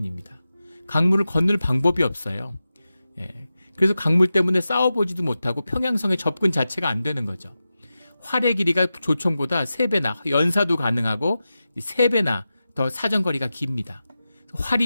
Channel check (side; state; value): both; inverted; correlation -0.93